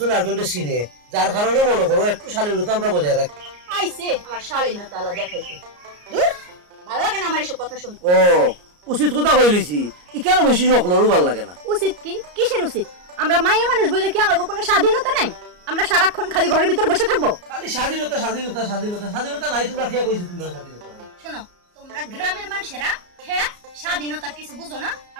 আরেকজনকে চিনে, যার কারণে মনে করো একটু শালীনতা আমরা বজায় রাখি। আইছে আমার শালীনতা আলা দেখাইতে, দূর ভালো লাগে না আমার এসব কথা শুনতে। ও উচিত কথা কইলিছি, ই কেন বেশি সকলেরও ভালো লাগে না। উচিত কি? কিসের উচিত? আমরা মাইয়া মানুষ বলে কি আমাদের কোনো স্বাধীনতা নাই? আমরা সারাক্ষণ খালি ঘরের ভিতর বসে থাকবো? খালি স্বাধীনতা স্বাধীনতা স্বাধীনতা স্বাধীনতা নাই, তোমরা খেয়ে কইছো তোমরা স্বাধীনতা নাই। শোনো তোমরা গ্রামের মানুষেরা খেত স্বাধীনতার কিছু বুঝো না,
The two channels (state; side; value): late; left; 34 ms